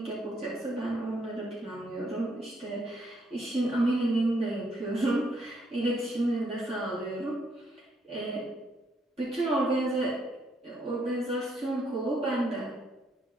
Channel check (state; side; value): normal; both; correlation 0.72